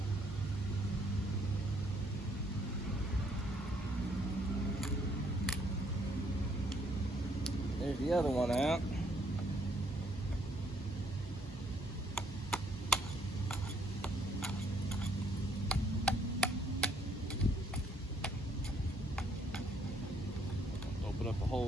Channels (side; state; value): both; normal; correlation 0.67